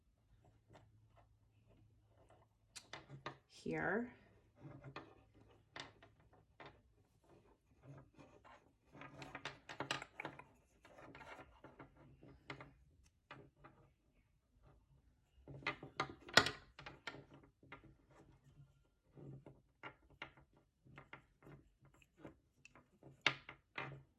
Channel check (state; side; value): identical; both; correlation 1.00